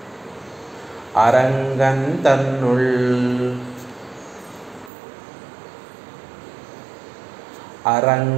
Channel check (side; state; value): left; drops out; at 4.9 s